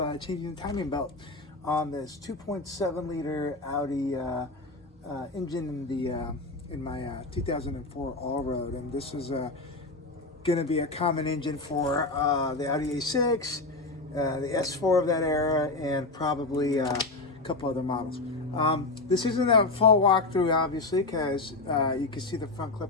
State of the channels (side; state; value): right; quieter; 3.3 dB